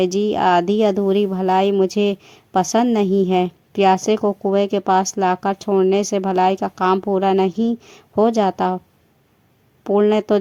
जी। आधी अधूरी भलाई मुझे पसंद नहीं है। प्यासे को कुएं के पास लाकर छोड़ने से भलाई का काम पूरा नहीं हो जाता। पुण्य तो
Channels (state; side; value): identical; both; correlation 1.00